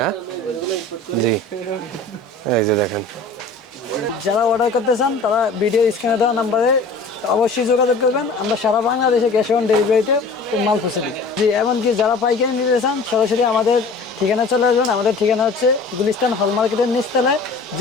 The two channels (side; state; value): right; quieter; 3.6 dB